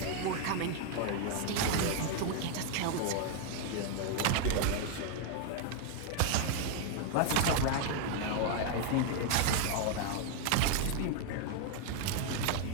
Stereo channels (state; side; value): different; both; correlation 0.00